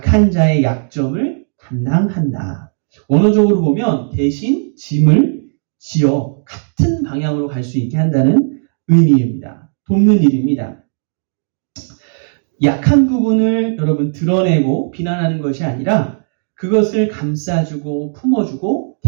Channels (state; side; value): silent; left; digital silence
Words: 자의 약점을 담당한다. 원어적으로 보면 대신 짐을 지어 같은 방향으로 갈 수 있게 한다는 의미입니다. 돕는 일입니다. 약한 부분을 여러분 드러내고 비난하는 것이 아니라 그것을 감싸주고 품어주고